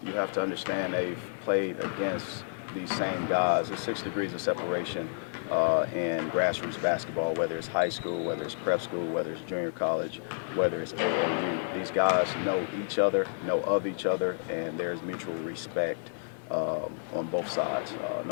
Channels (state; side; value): silent; right; digital silence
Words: you have to understand they've played against these same guys. There's 6 degrees of separation in grassroots basketball, whether it's high school, whether it's prep school, whether it's junior college, whether it's AAU. These guys know each other, know of each other, and there's mutual respect on both sides.